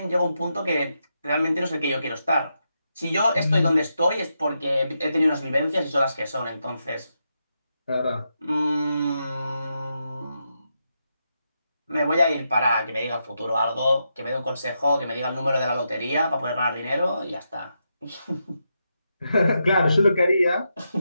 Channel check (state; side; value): inverted; both; correlation -0.84